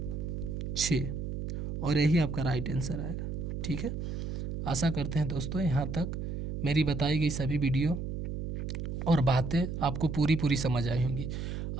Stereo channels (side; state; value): right; noise; hum, 4 dB below the sound